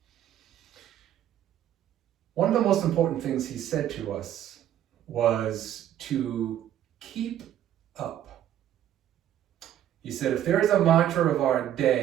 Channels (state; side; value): quieter; left; 11.2 dB